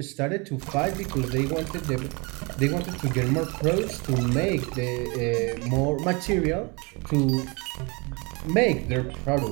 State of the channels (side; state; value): left; quieter; 29.3 dB